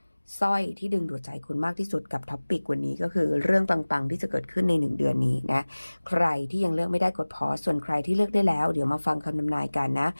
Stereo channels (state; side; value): inverted; both; correlation -1.00